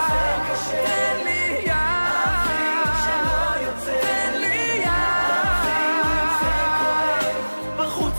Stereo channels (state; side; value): inverted; both; correlation -1.00